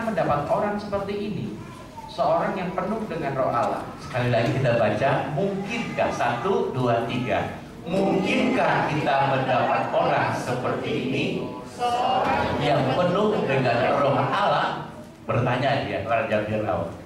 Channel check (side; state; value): both; identical; correlation 1.00